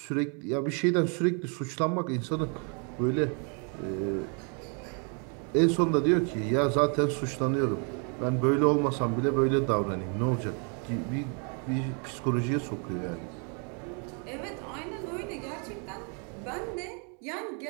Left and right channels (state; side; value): quieter; left; 38.3 dB